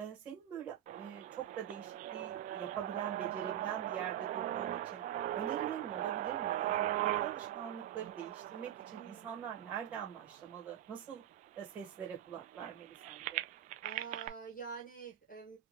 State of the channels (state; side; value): quieter; left; 11.3 dB